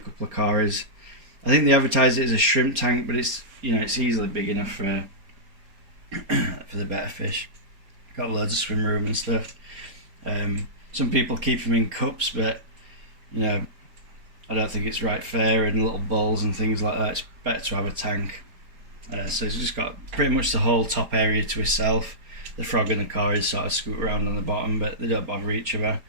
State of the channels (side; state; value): left; late; 4.3 ms